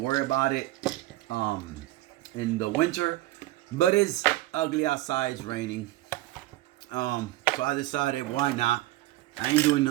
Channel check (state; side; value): quieter; left; 17.0 dB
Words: worry about it in the winter. But it's ugly outside. It's raining. So I decided, why not? I ain't doing